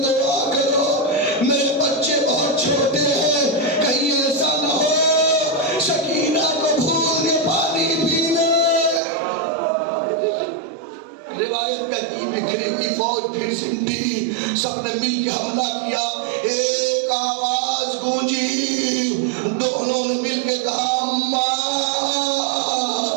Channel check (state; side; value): drops out; left; at 9.0 s